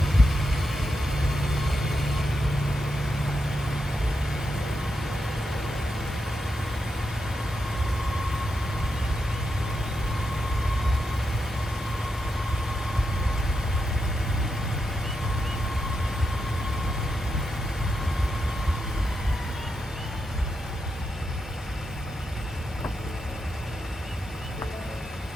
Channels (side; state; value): both; normal; correlation 0.85